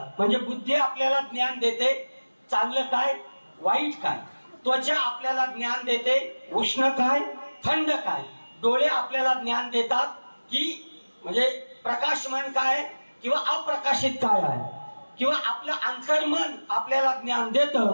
म्हणजे बुद्धी आपल्याला ज्ञान देते चांगलं काय वाईट काय, त्वचा आपल्याला ज्ञान देते उष्ण काय थंड काय, डोळे आपल्याला ज्ञान देतात की म्हणजे प्रकाशमान काय किंवा अप्रकाशित काय आहे, किंवा आपलं अंतर्मन आपल्याला ज्ञान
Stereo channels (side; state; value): both; inverted; correlation -1.00